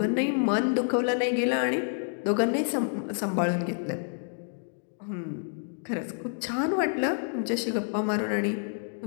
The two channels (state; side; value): silent; right; digital silence